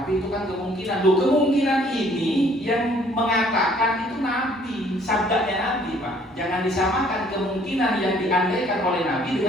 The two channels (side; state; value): both; normal; correlation 0.60